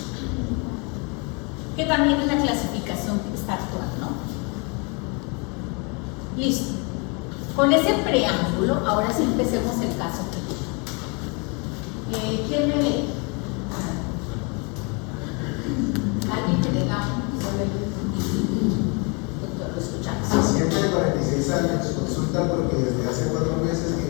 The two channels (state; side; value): quieter; right; 32.3 dB